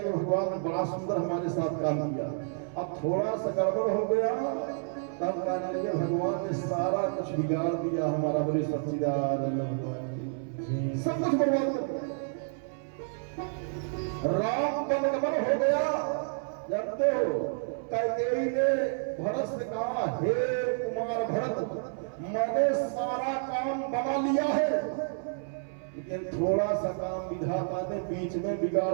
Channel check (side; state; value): left; silent; 58 dB below the other